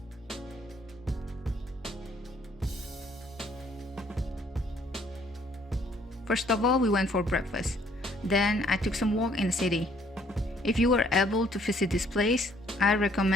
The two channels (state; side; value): normal; both; correlation 0.63